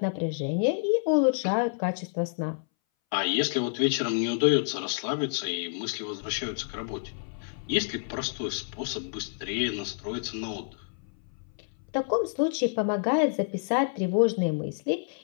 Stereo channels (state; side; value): silent; right; 59 dB below the other